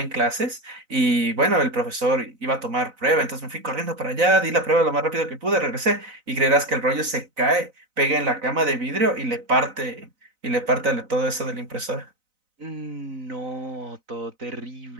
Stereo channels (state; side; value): late; left; 4.0 ms